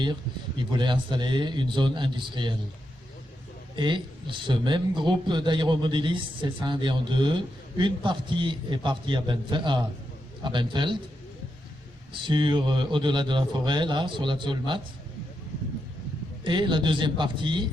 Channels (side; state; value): both; normal; correlation 0.85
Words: ils voulaient installer une zone industrielle. Et ce même groupe d'aéromodélistes s'est scindé en deux. Une partie est partie à Benfeld, au-delà de la forêt, là, sur la Zolmat. Et la deuxième partie